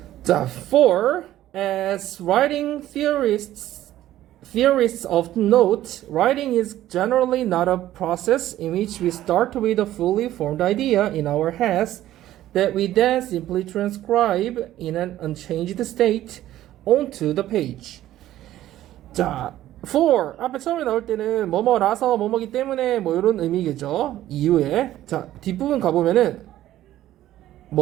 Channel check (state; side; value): quieter; left; 13.6 dB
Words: 자, for as writing theorists often note, writing is generally not a process in which we start with a fully formed idea in our heads that we then simply transcribe in an unchanged state onto the page. 자, for 앞에 처음에 나올 때는 뭐뭐라서 뭐뭐기 때문에 뭐 이런 의미겠죠. 이유에. 자, 뒷부분 가보면은